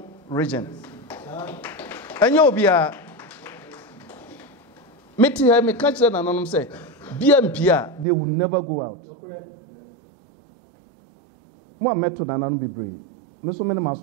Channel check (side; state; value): left; drops out; at 8.1 s